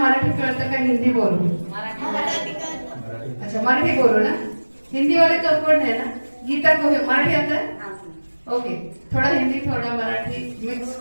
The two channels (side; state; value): both; inverted; correlation -1.00